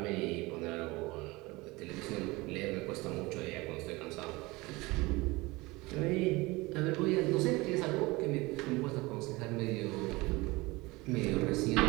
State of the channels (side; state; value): left; quieter; 22.6 dB